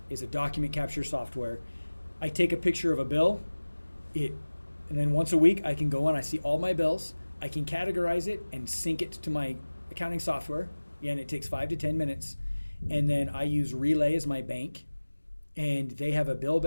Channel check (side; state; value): both; inverted; correlation -1.00